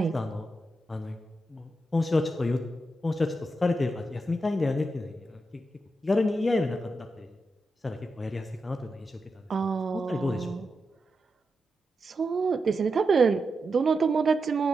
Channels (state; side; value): normal; both; correlation 0.87